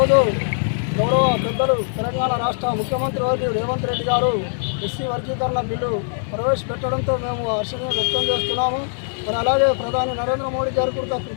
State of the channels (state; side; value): silent; right; digital silence